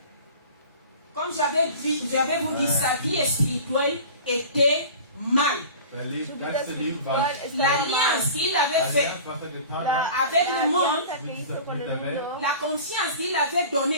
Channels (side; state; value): both; inverted; correlation -0.39